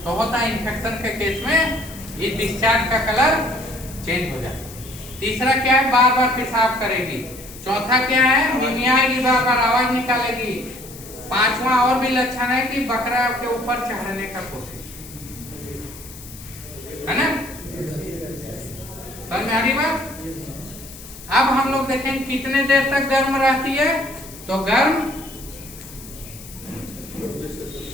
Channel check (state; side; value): noise; left; hiss, 16 dB below the sound